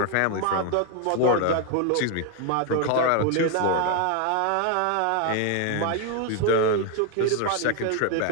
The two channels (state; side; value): different; both; correlation 0.01